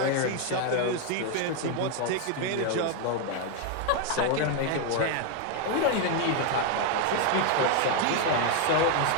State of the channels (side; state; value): both; different; correlation 0.01